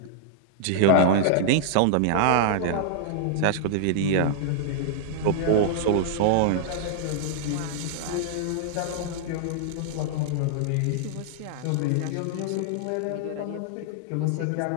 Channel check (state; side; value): different; both; correlation -0.01